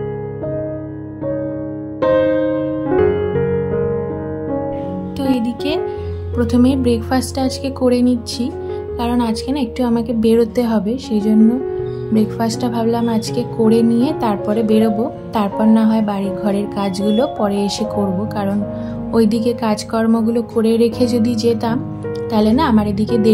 তো এদিকে প্রথমে ব্রেকফাস্টটা আজকে করে নিচ্ছি, কারণ আজকে না একটু আমাকে বেরোতে হবে। সেই জন্য ব্রেকফাস্টটা ভাবলাম আজকে করে নিয়ে তারপরে বেরোবো। তারপর না হয় বাড়ি ঘরের কাজগুলো পরে এসে করব, কারণ ওইদিকে কাজকর্মগুলো করে রেখে যদি যেতাম তাহলে না আমার এদিকে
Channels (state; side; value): identical; both; correlation 1.00